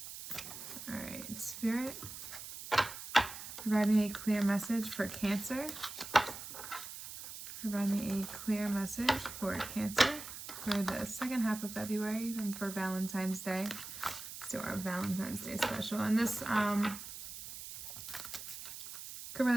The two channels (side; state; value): right; noise; hiss, 10 dB below the sound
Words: All right, Spirit, provide me a clear message for Cancer. Provide me a clear message for Cancer for the second half of February and for Valentine's Day. Let's do our Valentine's Day special. And this could